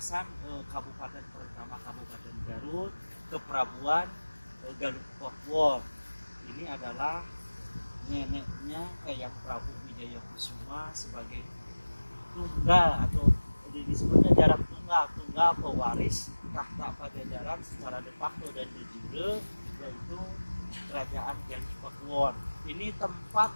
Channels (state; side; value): inverted; both; correlation -1.00